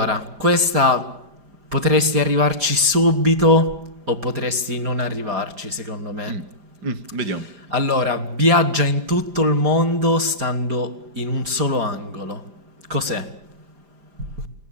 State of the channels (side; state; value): left; late; 5.0 ms